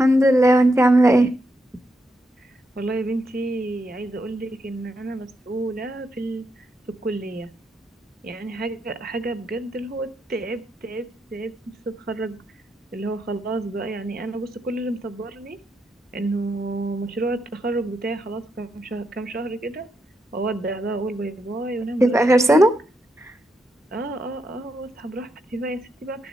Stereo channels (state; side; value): normal; both; correlation 0.81